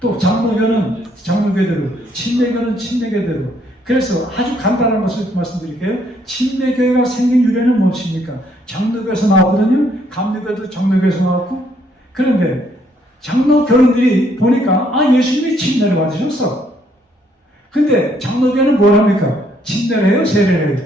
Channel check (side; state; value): both; normal; correlation 0.69